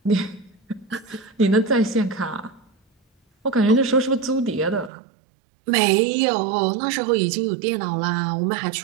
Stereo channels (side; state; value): left; drops out; at 4.9 s